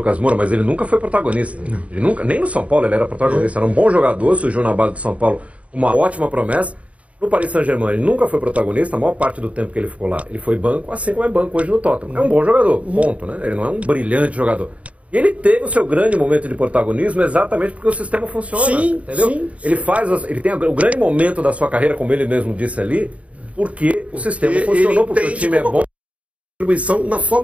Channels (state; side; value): late; left; 0.066 ms